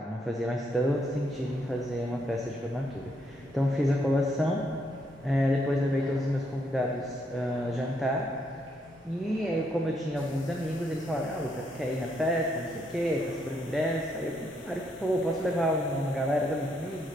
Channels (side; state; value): both; normal; correlation 0.75